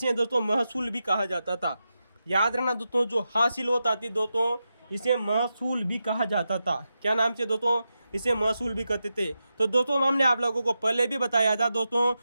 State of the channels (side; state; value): both; inverted; correlation -0.89